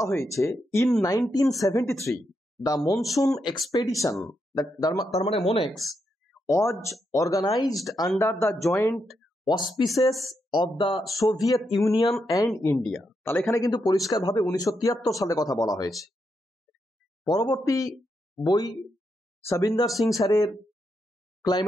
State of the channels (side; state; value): both; normal; correlation 0.82